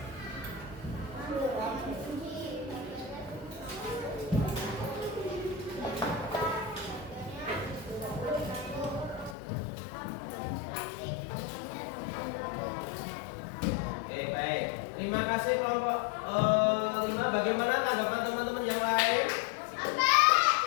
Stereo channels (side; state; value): right; drops out; at 9.3 s